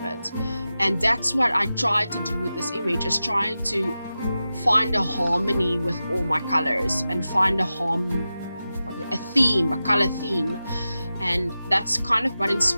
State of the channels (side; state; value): both; inverted; correlation -0.93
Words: it. And that's what I tried to do with this image, is trying to find a harmony with all my colors and find a theme, a color theme. And that's kind of what